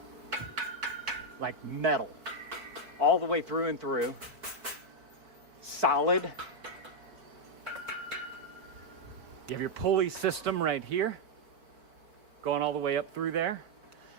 like metal, all the way through and through, solid. You have your pulley system right here, going all the way up through there.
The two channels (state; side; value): late; left; 4.5 ms